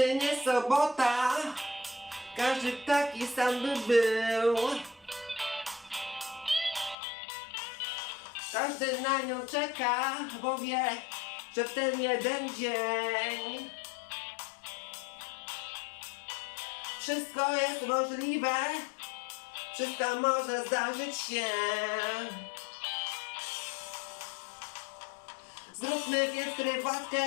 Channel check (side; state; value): right; drops out; at 7.0 s